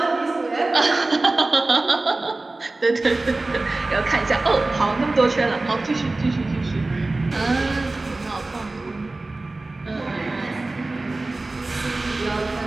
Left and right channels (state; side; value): quieter; left; 3.1 dB